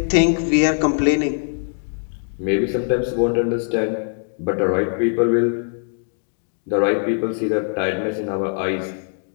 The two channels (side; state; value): right; silent; 65 dB below the other